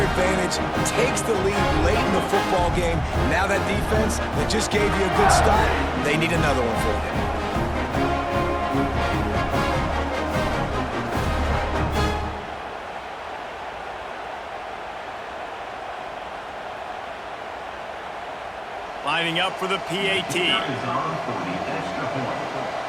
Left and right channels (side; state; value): both; identical; correlation 1.00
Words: takes the lead late in the football game. Now that defense that just gave you a good start, they need another one for you. Lining up for the PAT.